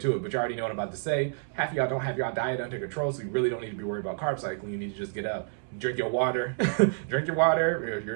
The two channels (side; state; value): left; silent; 57 dB below the other